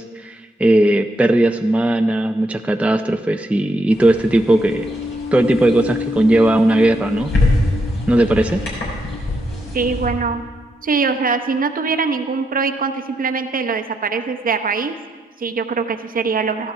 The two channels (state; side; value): normal; both; correlation 0.79